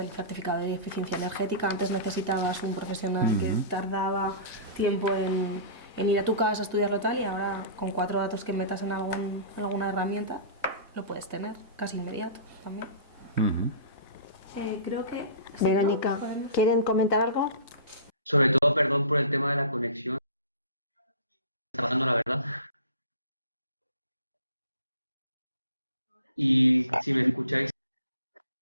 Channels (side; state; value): both; inverted; correlation -0.38